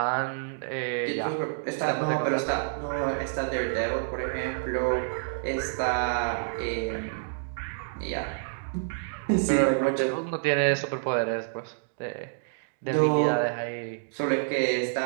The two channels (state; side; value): silent; left; digital silence